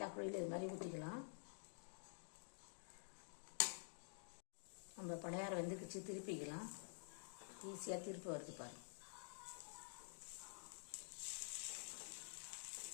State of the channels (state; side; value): silent; right; digital silence